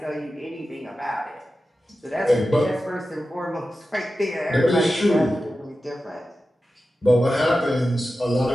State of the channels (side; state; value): both; normal; correlation 0.93